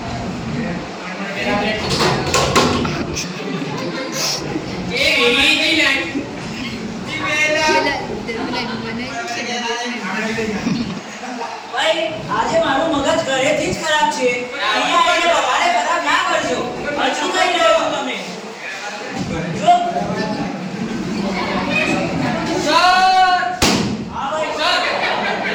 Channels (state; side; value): identical; both; correlation 1.00